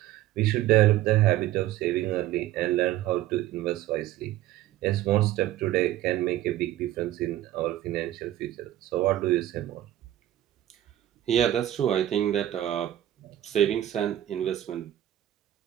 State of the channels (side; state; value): left; quieter; 13.3 dB